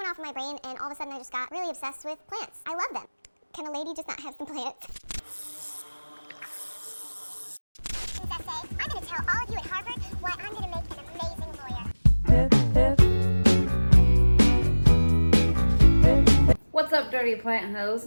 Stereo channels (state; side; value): inverted; both; correlation -1.00